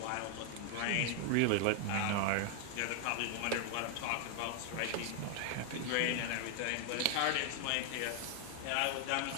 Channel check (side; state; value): both; different; correlation 0.00